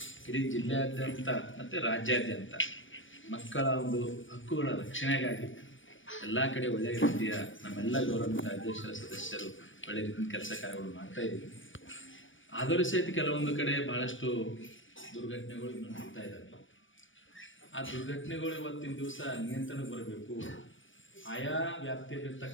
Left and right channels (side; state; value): right; late; 0.56 ms